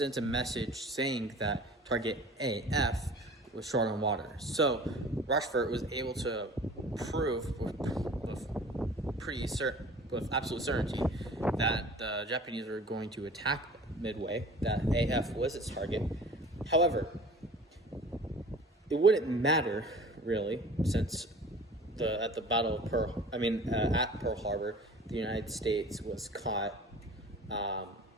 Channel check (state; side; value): normal; both; correlation 0.44